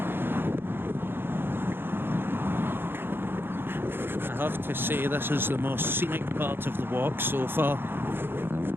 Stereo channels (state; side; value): late; left; 0.10 ms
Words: have to say this is the most scenic part of the walk so far.